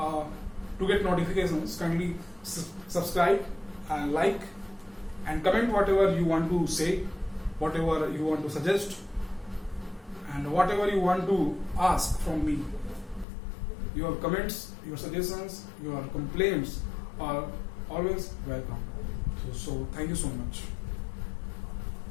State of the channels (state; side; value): drops out; right; at 13.2 s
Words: get notifications, kindly subscribe and like and comment whatever you want to say, whatever you want to suggest, and whatever you want to ask from me, your comments, your suggestions, your complaints are always welcome. So thank you so much.